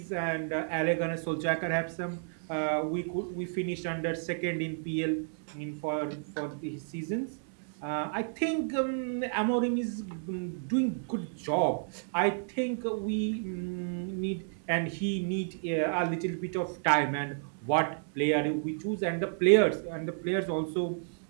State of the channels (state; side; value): silent; left; digital silence